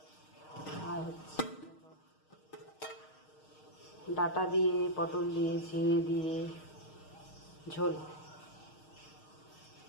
আর হচ্ছে ডাঁটা দিয়ে, পটল দিয়ে, ঝিঙে দিয়ে ঝোল,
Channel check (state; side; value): late; right; 6.5 ms